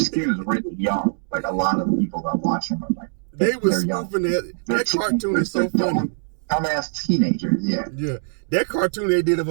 really young. Like a lot of the people that watch him are like they was spoofing that cartoon is so funny. Dumbass teenagers, yeah. Yeah, that cartoon they did of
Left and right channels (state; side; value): silent; left; 64 dB below the other